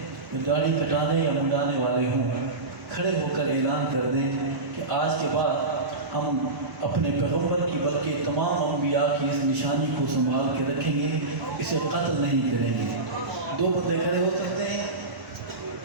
جو داڑھی کٹانے یا منڈانے والے ہوں، کھڑے ہو کر اعلان کر دیں کہ آج کے بعد ہم اپنے پیغمبر کی بلکہ تمام انبیاء کی اس نشانی کو سنبھال کے رکھیں گے، اسے قتل نہیں کریں گے؟ دو بندے کھڑے ہو سکتے ہیں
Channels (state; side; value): quieter; left; 3.0 dB